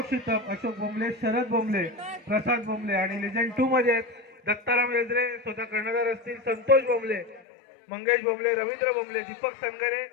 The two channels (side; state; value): right; drops out; at 7.4 s